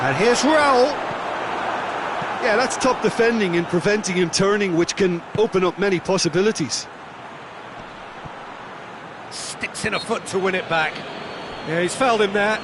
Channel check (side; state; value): both; identical; correlation 1.00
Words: And here's Raúl. Yeah, that's top defending and preventing him turning, which can open up many possibilities. Sticks in a foot to win it back. Yeah, he's fouled him there.